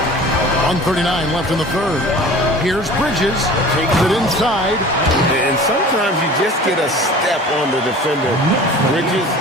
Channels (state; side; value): normal; both; correlation 0.42